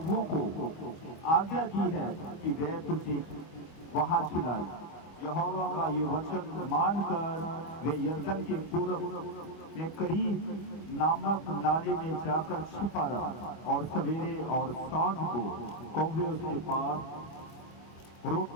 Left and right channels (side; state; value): right; late; 25 ms